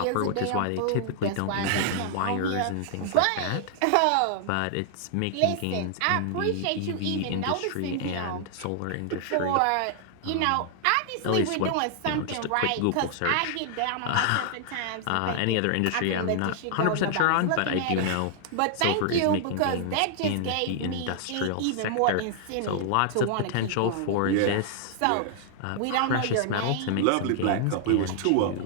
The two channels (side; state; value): both; different; correlation -0.01